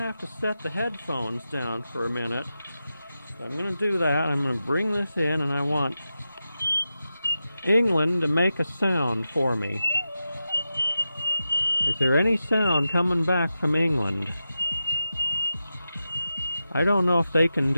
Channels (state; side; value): inverted; both; correlation -0.90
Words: have to set the headphones down for a minute. So I'm going to do that. I'm going to bring this in, and I want England to make a sound for me. Is there any sound coming back from England? I don't know if they can